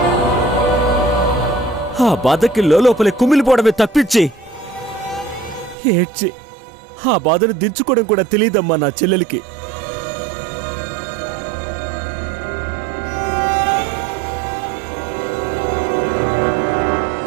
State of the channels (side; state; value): left; drops out; at 5.8 s